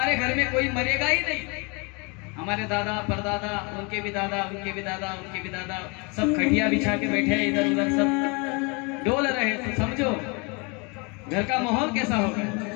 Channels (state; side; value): quieter; right; 30.7 dB